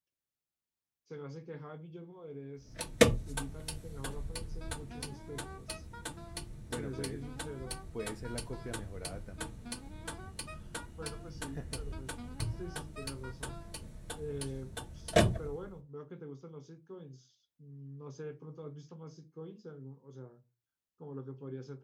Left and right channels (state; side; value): identical; both; correlation 1.00